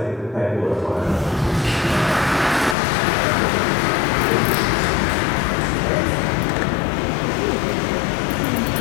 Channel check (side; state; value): right; drops out; at 2.8 s